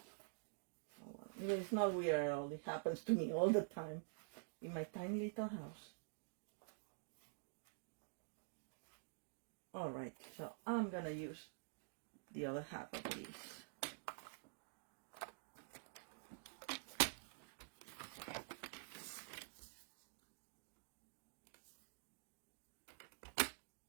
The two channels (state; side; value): silent; left; digital silence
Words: Oh, well. I mean, it's not weird at all. It happens to me all the time in my tiny little house. Alright, so I'm gonna use the other half of this.